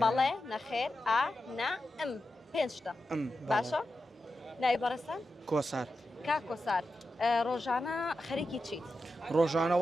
بەڵێ نەخێر ئا نا ئەم پێنجتە باشە؟ ناوی بەڕێستان؟ کۆسار کاکۆسار ڕۆژانە خەریکی چیت؟ ڕۆژانە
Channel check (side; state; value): both; normal; correlation 0.90